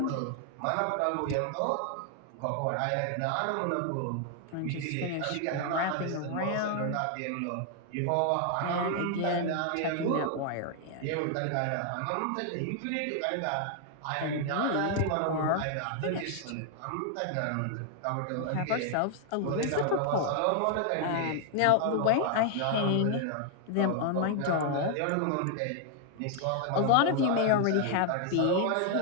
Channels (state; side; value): different; both; correlation 0.00